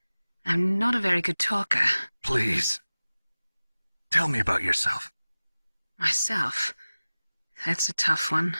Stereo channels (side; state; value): both; inverted; correlation -0.98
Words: I'm not a very good talker. Please. Tell me about yourself. Myself? That's a tough one.